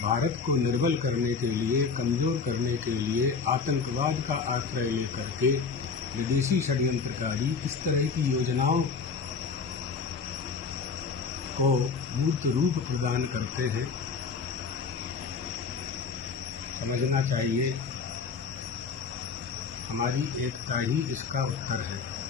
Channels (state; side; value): quieter; right; 5.4 dB